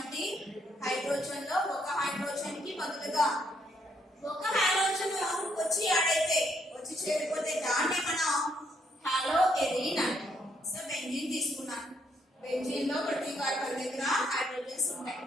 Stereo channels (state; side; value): normal; both; correlation 0.72